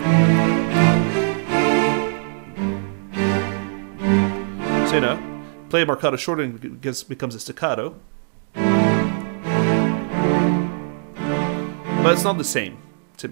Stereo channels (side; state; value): left; silent; digital silence